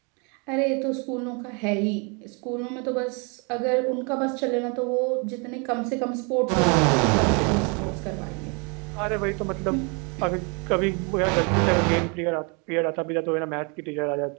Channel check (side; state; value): left; quieter; 33.3 dB